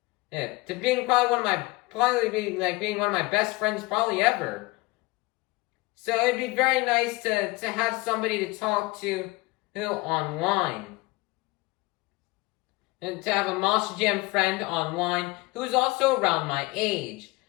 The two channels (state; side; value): quieter; right; 22.6 dB